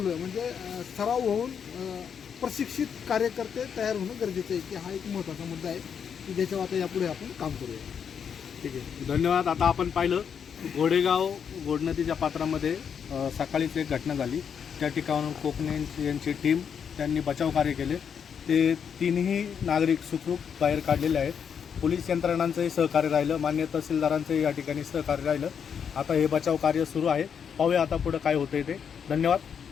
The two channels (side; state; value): right; quieter; 7.3 dB